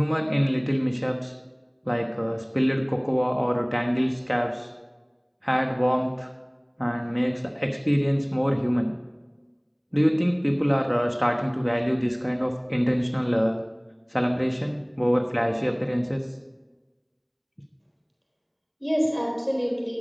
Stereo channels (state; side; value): identical; both; correlation 1.00